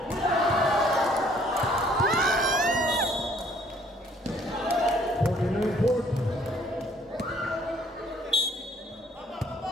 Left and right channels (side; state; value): both; normal; correlation 0.61